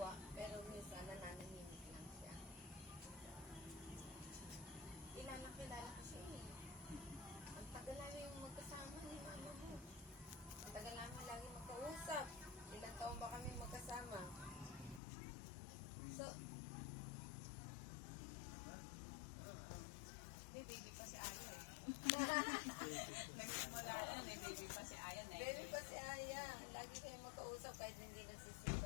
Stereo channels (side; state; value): right; drops out; at 15.0 s